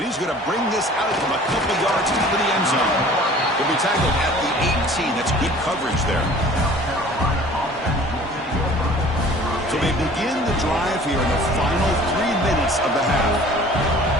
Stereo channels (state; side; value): normal; both; correlation 0.48